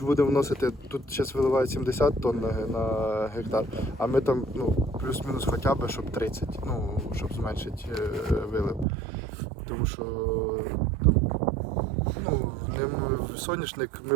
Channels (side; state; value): left; drops out; at 8.8 s